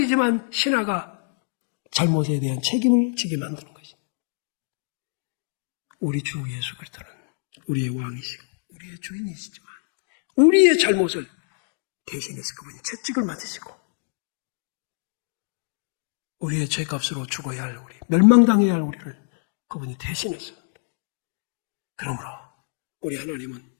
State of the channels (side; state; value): right; silent; 61 dB below the other